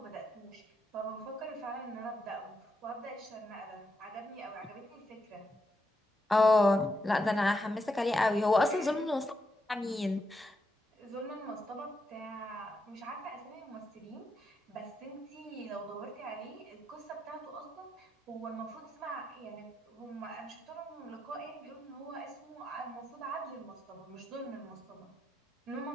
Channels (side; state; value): both; normal; correlation 0.83